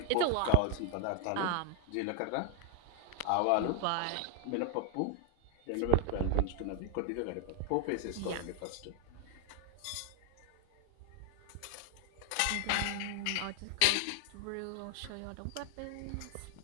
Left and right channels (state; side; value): different; both; correlation 0.00